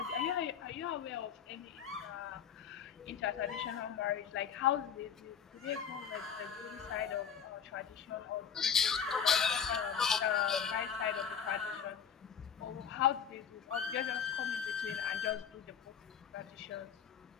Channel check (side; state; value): right; quieter; 7.6 dB